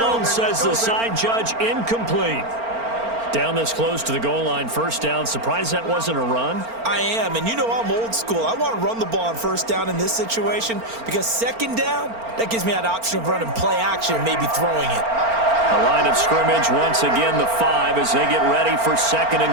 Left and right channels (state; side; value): late; left; 4.4 ms